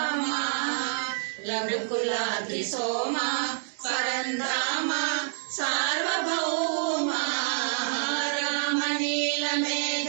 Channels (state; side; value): silent; left; digital silence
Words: రఘుకులాద్రి సోమ పరంధామ సార్వభౌమ. రామ నీల